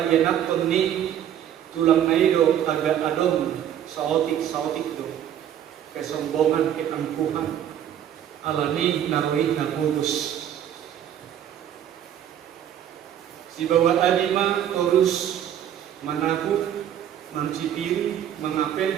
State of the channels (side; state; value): left; quieter; 10.3 dB